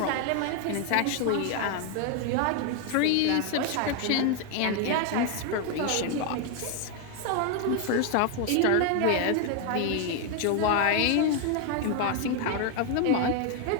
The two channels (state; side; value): different; both; correlation 0.01